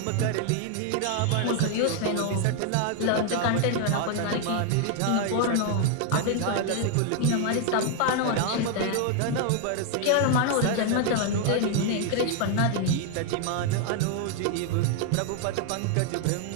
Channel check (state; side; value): different; both; correlation 0.00